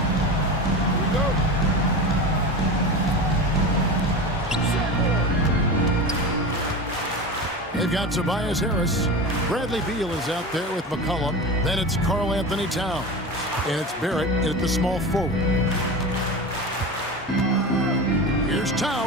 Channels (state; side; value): normal; both; correlation 0.27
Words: Here we go. They've got Tobias Harris. Bradley Beal is out there with McCollum. Then it's Karl Anthony Towns. And it's Barrett at the small forward. Here's